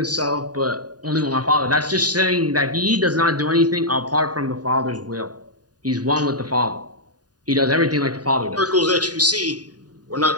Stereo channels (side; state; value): left; late; 0.68 ms